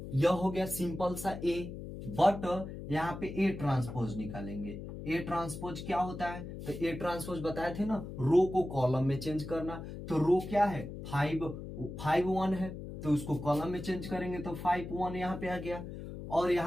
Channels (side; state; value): left; noise; hum, 9 dB below the sound